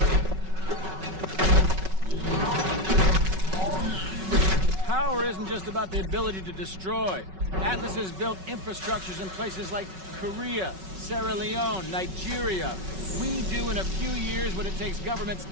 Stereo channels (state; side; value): late; left; 5.3 ms